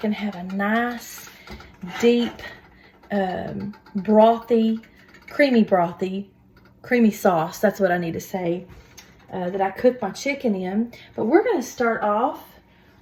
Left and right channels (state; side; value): identical; both; correlation 1.00